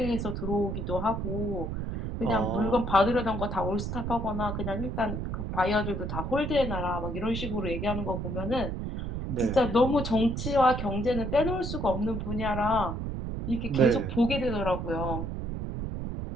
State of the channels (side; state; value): right; noise; rumble, 4 dB below the sound